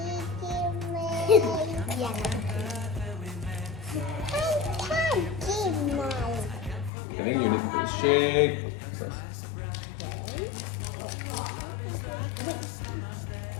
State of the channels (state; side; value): drops out; right; at 6.9 s